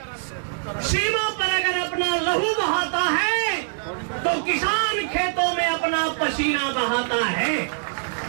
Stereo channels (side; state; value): left; silent; digital silence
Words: सीमा पर अगर अपना लहू बहाता है तो किसान खेतों में अपना पसीना बहाता है।